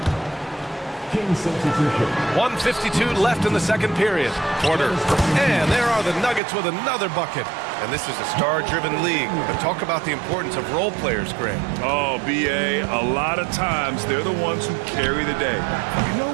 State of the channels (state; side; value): drops out; left; at 6.4 s